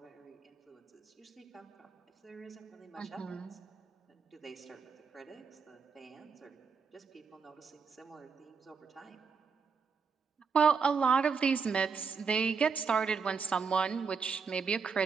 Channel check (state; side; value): quieter; left; 5.6 dB